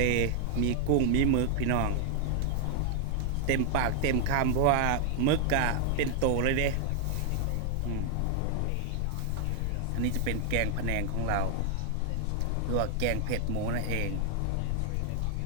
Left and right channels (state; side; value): different; both; correlation 0.00